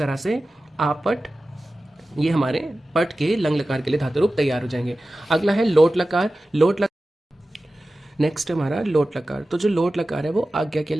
से आपट, ये हमारे पट के लंग लकार के लिए धातु रूप तैयार हो जाएंगे। अगला है लोट लकार। लोट लकार नेक्स्ट हमारा लोट लकार। तो जो लोट लकार है वो आज्ञा के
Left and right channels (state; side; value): normal; both; correlation 0.95